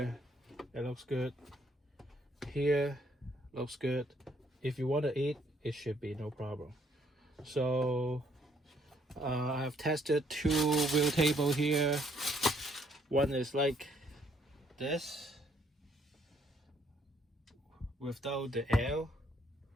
It looks good. Here looks good. If you want to eat, it should be no problem. So I've tested two wheel table here. One is like this without the L.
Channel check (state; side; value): normal; both; correlation 0.67